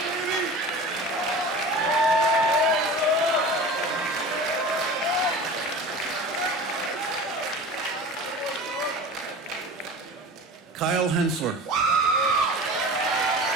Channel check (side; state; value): both; normal; correlation 0.36